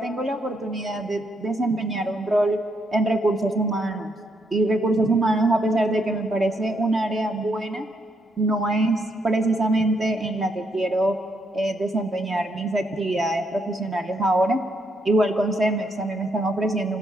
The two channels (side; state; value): both; normal; correlation 0.76